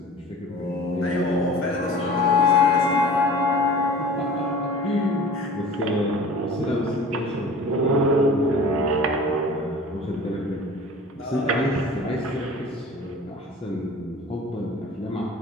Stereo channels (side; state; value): both; normal; correlation 0.41